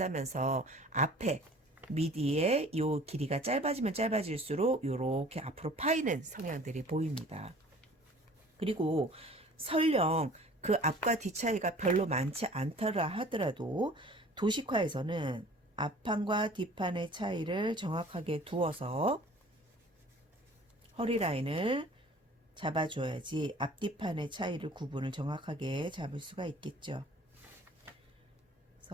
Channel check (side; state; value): both; normal; correlation 0.48